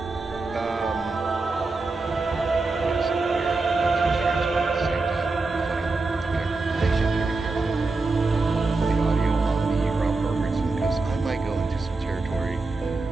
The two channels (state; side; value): quieter; left; 3.6 dB